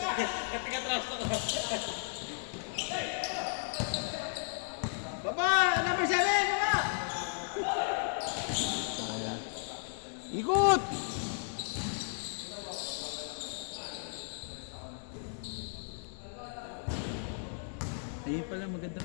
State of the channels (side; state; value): right; silent; digital silence